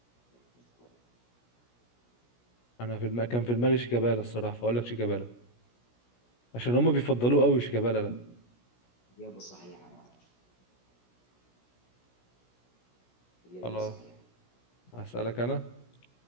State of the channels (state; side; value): late; right; 17 ms